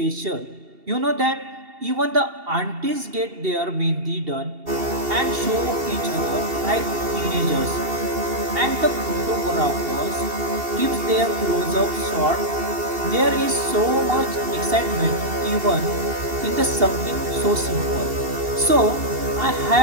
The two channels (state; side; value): late; left; 2.7 ms